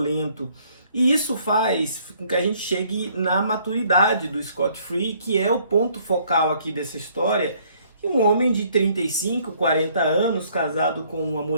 E isso faz com que a gente chegue na maturidade do Scott Free, que é o ponto focal aqui dessa história, que um homem de 35, 40 anos, casado com uma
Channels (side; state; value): both; inverted; correlation -0.63